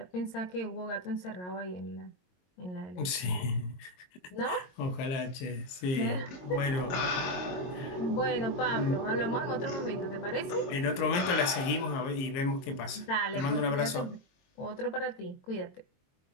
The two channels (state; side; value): late; right; 22 ms